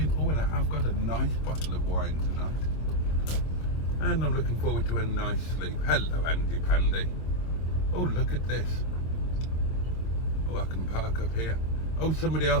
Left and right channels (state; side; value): late; right; 25 ms